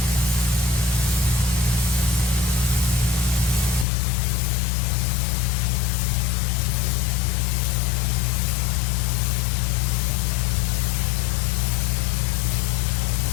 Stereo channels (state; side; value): drops out; right; at 3.9 s